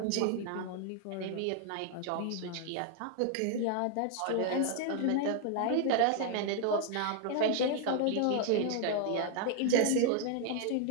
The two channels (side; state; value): both; different; correlation 0.00